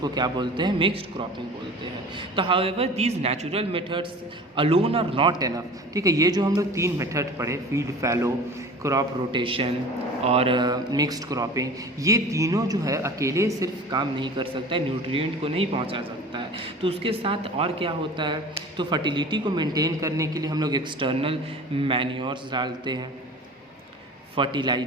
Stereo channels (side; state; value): both; normal; correlation 0.40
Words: क्या बोलते हैं, मिक्स्ड क्रॉपिंग बोलते हैं। तो however these natural methods alone are not enough, ठीक है, ये जो हम लोग 3 मेथड पढ़े, फील्ड फैलो, क्रॉप रोटेशन और मिक्स्ड क्रॉपिंग, ये तीनों जो है अकेले सिर्फ काम नहीं कर सकता है, न्यूट्रिएंट को नहीं पहुंचा सकता है। तो उसके साथ और क्या होता है, तो फर्टिलिटी को मेंटेन करने के लिए हम लोग एक्सटर्नल मैन्योर्स डालते हैं,